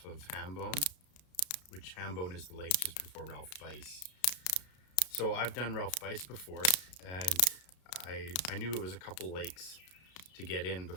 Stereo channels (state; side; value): late; right; 33 ms